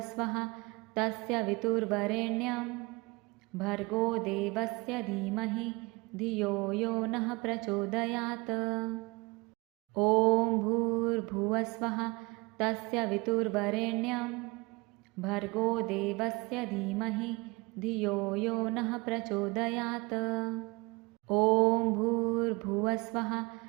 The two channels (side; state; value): left; quieter; 26.0 dB